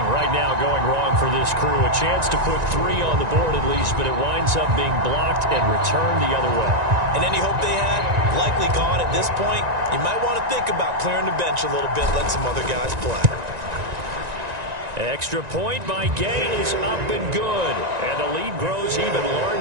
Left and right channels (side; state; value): left; late; 1.9 ms